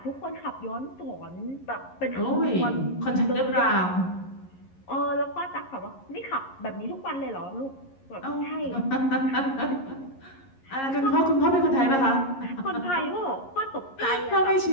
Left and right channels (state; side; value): late; right; 11 ms